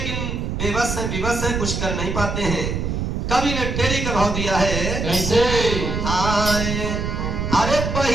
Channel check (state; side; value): noise; right; rumble, 2 dB below the sound